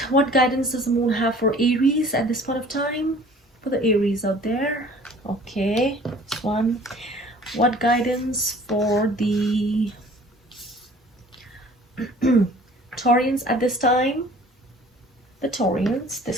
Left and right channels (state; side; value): normal; both; correlation 0.50